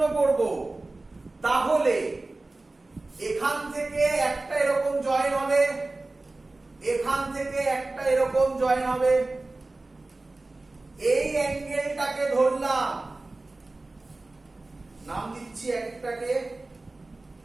করব। তাহলে এখান থেকে একটা এরকম জয়েন হবে, এখান থেকে একটা এরকম জয়েন হবে। এই অ্যাঙ্গেলটাকে ধরলাম, নাম দিচ্ছি একটাকে,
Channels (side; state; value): left; quieter; 3.1 dB